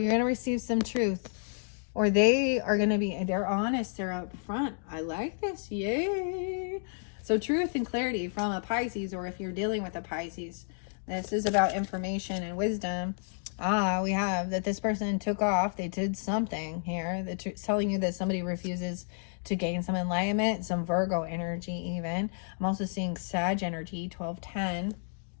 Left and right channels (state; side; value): silent; right; digital silence